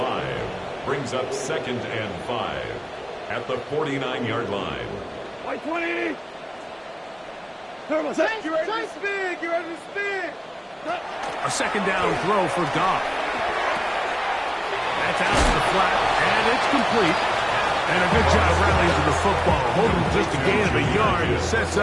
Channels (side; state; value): both; identical; correlation 1.00